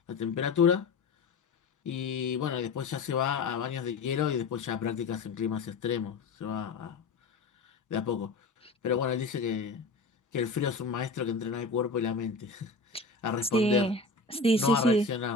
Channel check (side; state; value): right; quieter; 3.9 dB